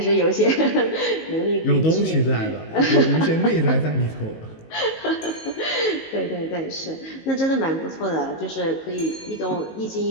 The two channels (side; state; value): right; late; 19 ms